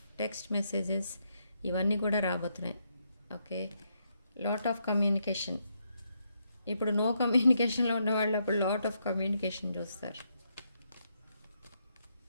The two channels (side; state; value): both; inverted; correlation -0.78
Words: text messages ఇవన్నీ కూడా రాబోతున్నాయి. Okay, lot of communication. ఇప్పుడు నో కమ్యూనికేషన్లో ఉన్న వాళ్ళు అప్పుడు లాట్ ఆఫ్ కమ్యూనికేషన్ చూస్తారు.